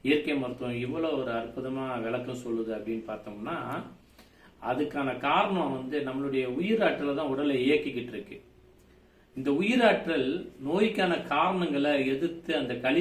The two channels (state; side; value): identical; both; correlation 1.00